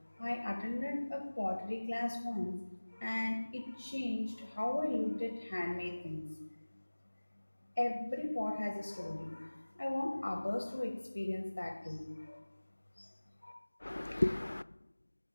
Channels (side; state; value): both; inverted; correlation -1.00